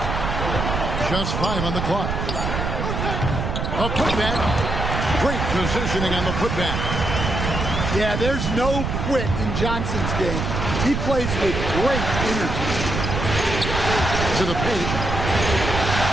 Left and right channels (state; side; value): noise; right; rumble, 2 dB below the sound